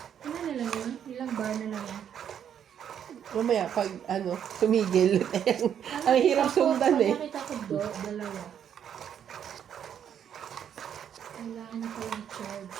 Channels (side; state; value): left; quieter; 9.0 dB